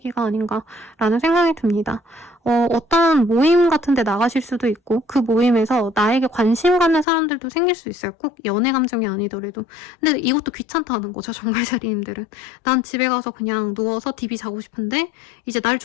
아닌가라는 생각이 듭니다. 어떤 모임 같은 데 나가실 수도 있고 그 모임에서 나에게 관심 갖는 사람들도 생길 수 있어요. 꼭 연애 감정이 아니더라도. 근데 이것도 귀찮다는 거죠. 정갈자리님들은. 난 집에 가서 그냥 누워서 DB 자고 싶은데 이제 날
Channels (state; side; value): drops out; right; at 7.1 s